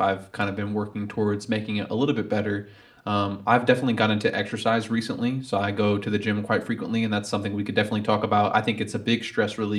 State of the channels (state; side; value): identical; both; correlation 1.00